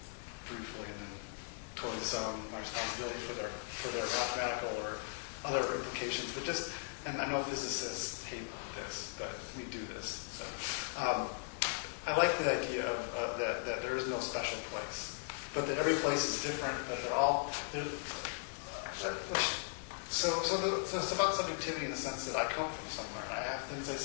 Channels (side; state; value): right; silent; digital silence